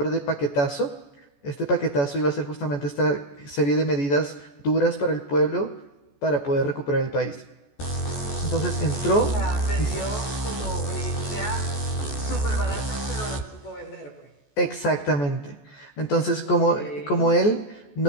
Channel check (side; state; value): right; late; 14 ms